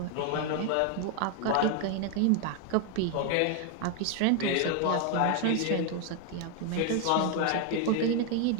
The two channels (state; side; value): different; both; correlation 0.01